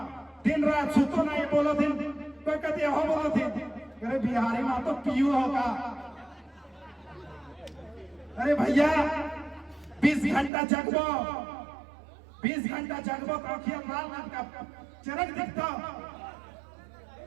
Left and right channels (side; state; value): left; drops out; at 10.5 s